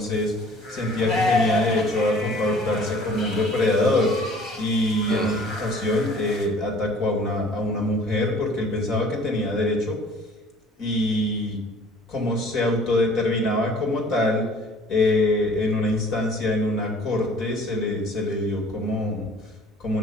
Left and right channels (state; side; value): normal; both; correlation 0.51